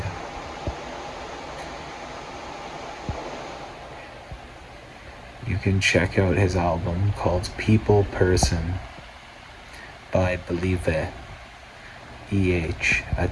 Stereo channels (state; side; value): identical; both; correlation 1.00